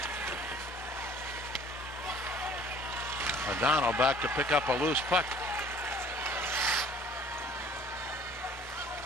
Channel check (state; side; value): normal; both; correlation 0.52